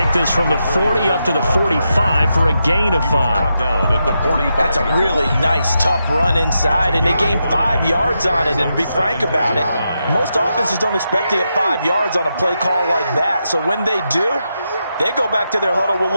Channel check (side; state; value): both; inverted; correlation -0.85